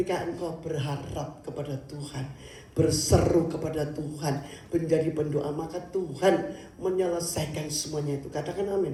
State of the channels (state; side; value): identical; both; correlation 1.00